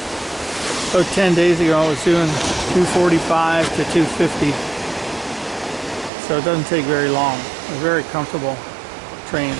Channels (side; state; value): left; drops out; at 6.1 s